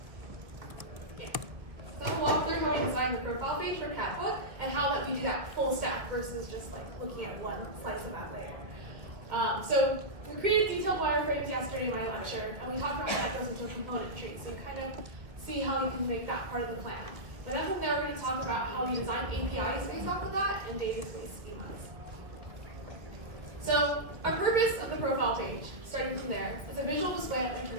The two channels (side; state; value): left; late; 1.8 ms